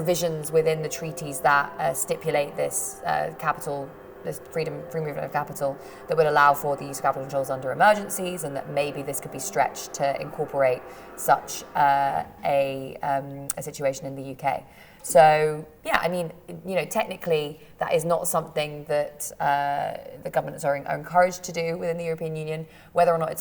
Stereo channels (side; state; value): both; identical; correlation 1.00